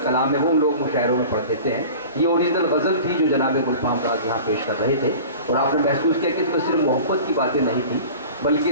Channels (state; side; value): inverted; both; correlation -0.39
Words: کلام ہے وہ لوگ مشاعروں میں پڑھ دیتے ہیں. یہ اوریجنل غزل تھی جو جناب گلفام راز یہاں پیش کر رہے تھے. اور آپ نے محسوس کیا کہ اس میں صرف محبت کی باتیں نہیں تھیں